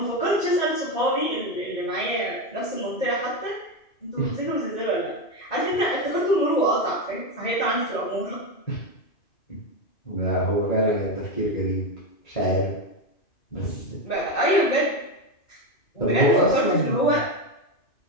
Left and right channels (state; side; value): late; right; 2.5 ms